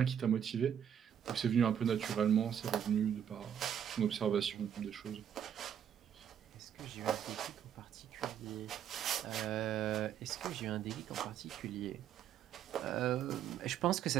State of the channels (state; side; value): quieter; left; 9.2 dB